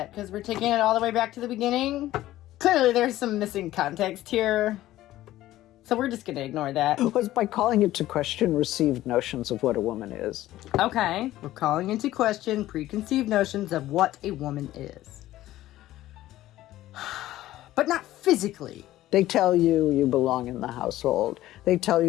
Because we're taking it all the way back to the beginning? Clearly there's some missing context here. So we're just going to ignore that. Was by calling into question received notions of what a woman is. Okay, we're calling into question preconceived notions of what a woman is. But not physically. They tell you you belong in the household. They tell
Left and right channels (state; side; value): quieter; right; 15.0 dB